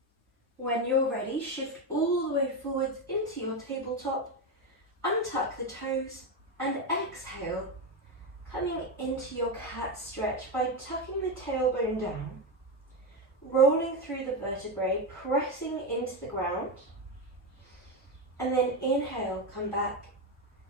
When you're ready, shift all the way forwards into your tabletop, untuck the toes and exhale, coming into your cat stretch by tucking the tailbone down. Rolling through the vertebrae, pressing into the ground, and then inhale, come back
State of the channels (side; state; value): both; normal; correlation 0.12